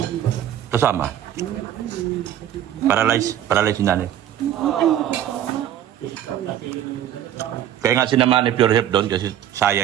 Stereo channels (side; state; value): left; quieter; 11.0 dB